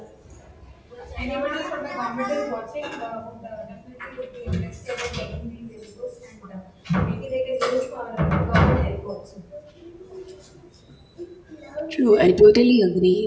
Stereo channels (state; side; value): identical; both; correlation 1.00